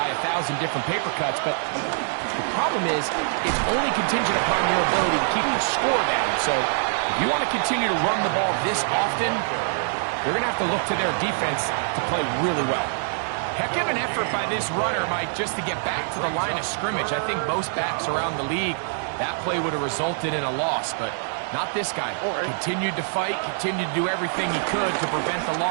1,000 different paper cuts. But the problem is, it's only contingent upon your ability to keep the score down. So if you want to continue to run the ball this often, you're going to have to look to their defense to play really well. Heck of an effort by this runner, Mike, just to get back to the line of scrimmage. I think most backs around the league, that play would have resulted in a loss, but not this guy. Continued to fight, continued to do everything he could to prevent the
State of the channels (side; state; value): left; silent; digital silence